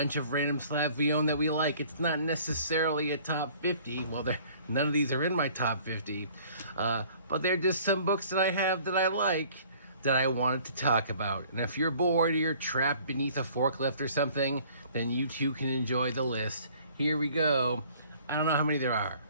of random slabs we own that we like. It's not necessarily a top 50. Well, none of these are in my top 50. But they're just some books that I have that I like, that I wanted to talk about. And if you're bored or you're trapped beneath a forklift or something, then you too can enjoy the list. Here we go. I don't know how many there are.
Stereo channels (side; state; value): both; inverted; correlation -0.54